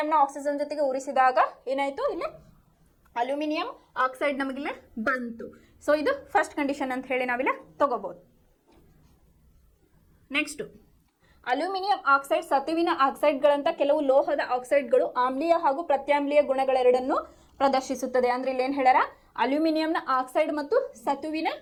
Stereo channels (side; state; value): both; identical; correlation 1.00